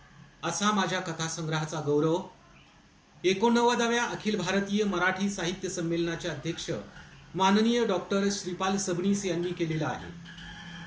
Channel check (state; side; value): identical; both; correlation 1.00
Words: असा माझ्या कथा संग्रहाचा गौरव 89व्या अखिल भारतीय मराठी साहित्य संमेलनाचे अध्यक्ष माननीय डॉक्टर श्रीपाल सबनीस यांनी केलेला आहे.